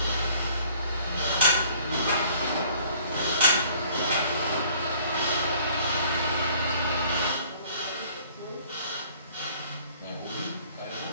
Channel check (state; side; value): inverted; both; correlation -0.56